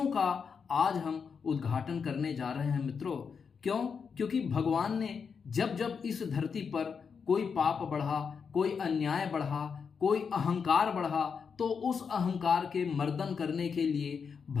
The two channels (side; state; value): right; quieter; 6.0 dB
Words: का आज हम उद्घाटन करने जा रहे हैं। मित्रों, क्योंकि भगवान ने जब जब इस धरती पर कोई पाप बढ़ा, कोई अन्याय बढ़ा, कोई अहंकार बढ़ा, तो उस अहंकार के मर्दन करने के लिए